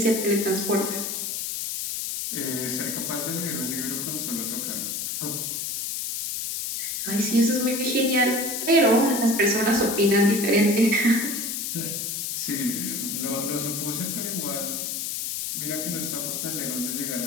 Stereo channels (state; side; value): noise; left; hiss, 3 dB below the sound